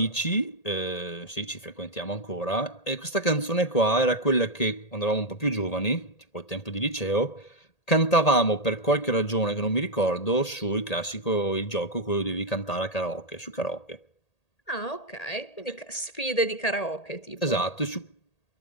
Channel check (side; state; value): right; late; 1.8 ms